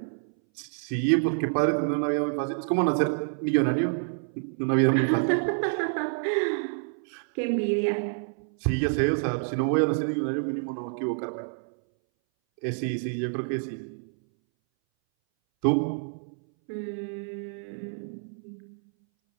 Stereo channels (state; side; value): silent; left; 60 dB below the other